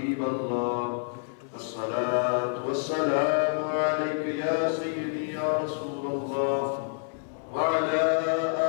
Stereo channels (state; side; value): silent; right; 58 dB below the other